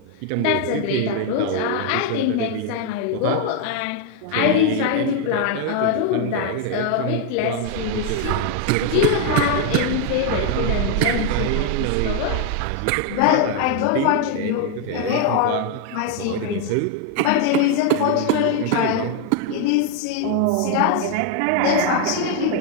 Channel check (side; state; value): both; different; correlation 0.01